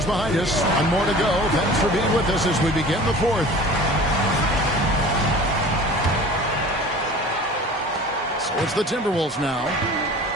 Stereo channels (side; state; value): both; normal; correlation 0.42